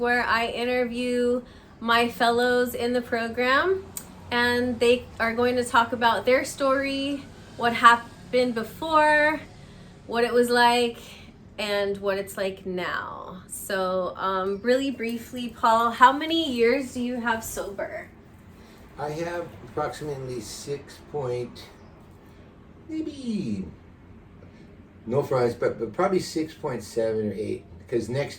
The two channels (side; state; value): both; identical; correlation 1.00